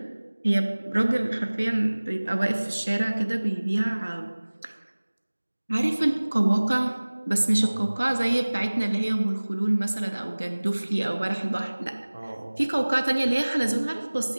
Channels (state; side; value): inverted; both; correlation -1.00